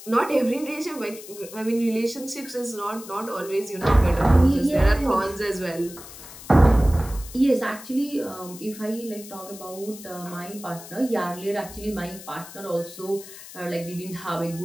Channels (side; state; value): left; noise; hiss, 15 dB below the sound